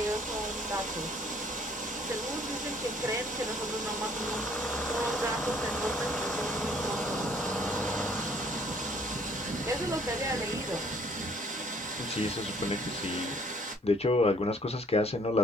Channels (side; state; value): both; normal; correlation 0.60